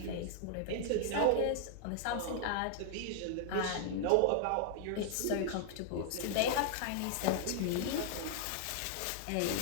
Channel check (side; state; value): both; different; correlation -0.01